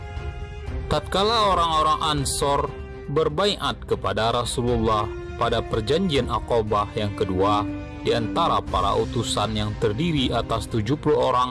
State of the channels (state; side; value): identical; both; correlation 1.00